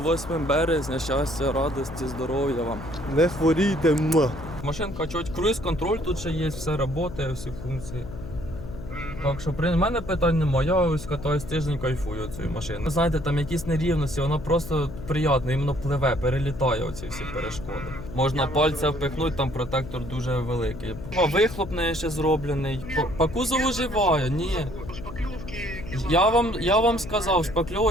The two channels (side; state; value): left; noise; hum, 11 dB below the sound